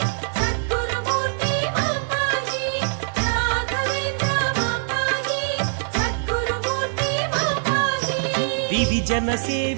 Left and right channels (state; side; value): silent; left; digital silence